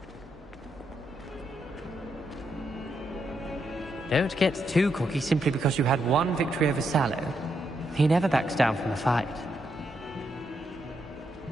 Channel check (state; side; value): normal; both; correlation 0.80